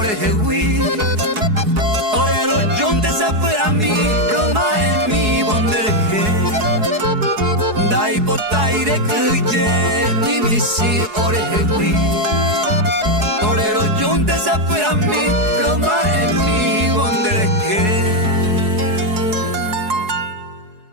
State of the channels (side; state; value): left; late; 4.7 ms